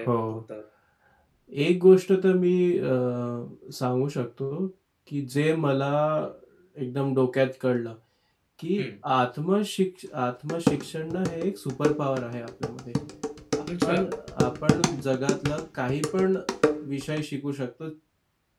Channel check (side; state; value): both; identical; correlation 1.00